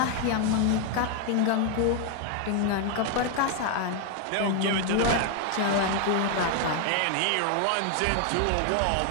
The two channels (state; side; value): different; both; correlation 0.00